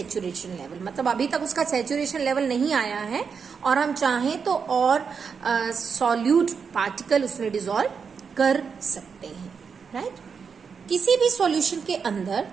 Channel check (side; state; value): left; quieter; 6.0 dB